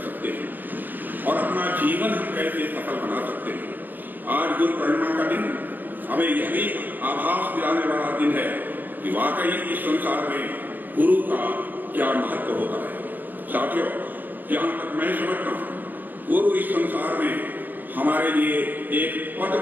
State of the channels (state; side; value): late; left; 0.087 ms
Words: सकते हैं और अपना जीवन हम कैसे सफल बना सकते हैं। आज गुरु पूर्णिमा का दिन हमें यह भी आभास दिलाने वाला दिन है कि वाकई इस संसार में गुरु का क्या महत्व होता है। साथियों, जहां तक मैं समझता हूं, गुरु इस संसार में हमारे लिए एक पथ